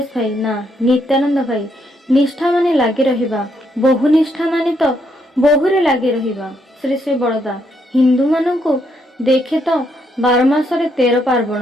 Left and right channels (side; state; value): both; normal; correlation 0.75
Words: भाई ना। नित्यानंद भाई, निष्ठा माने लागी रहिबा, बहु निष्ठा माने तो बहुरे लागी रहिबा। श्री श्री बड़दा हिंदू मानू देखे तो 12 मासरे 13